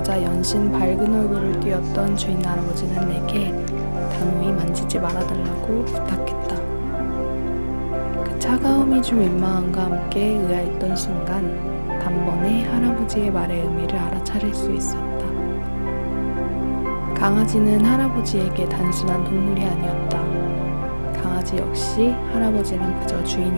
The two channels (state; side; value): inverted; both; correlation -1.00